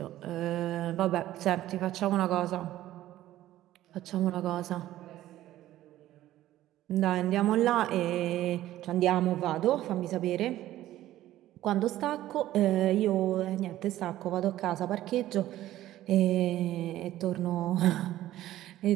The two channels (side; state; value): left; quieter; 14.2 dB